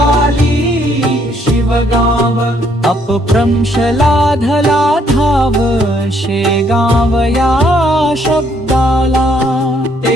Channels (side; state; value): both; normal; correlation 0.68